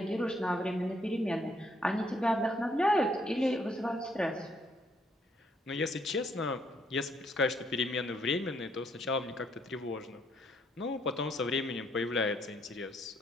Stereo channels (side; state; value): both; normal; correlation 0.70